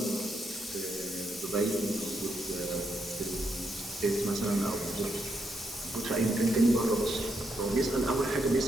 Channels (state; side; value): normal; both; correlation 0.79